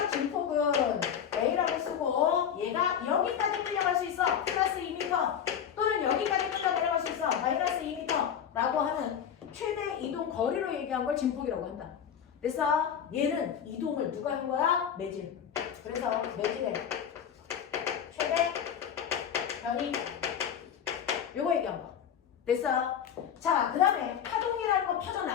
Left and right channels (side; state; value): right; quieter; 8.5 dB